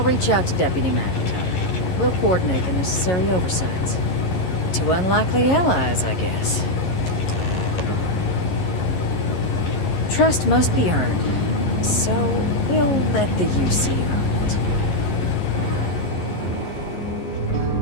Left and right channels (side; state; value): right; late; 11 ms